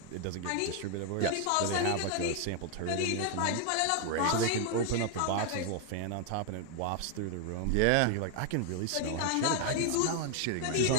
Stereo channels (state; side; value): different; both; correlation 0.00